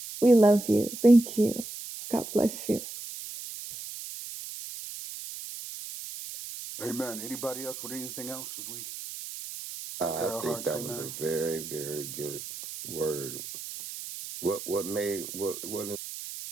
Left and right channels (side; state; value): right; noise; hiss, 10 dB below the sound